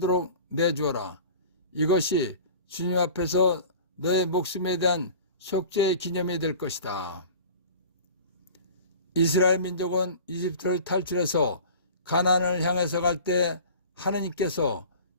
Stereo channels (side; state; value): both; inverted; correlation -0.40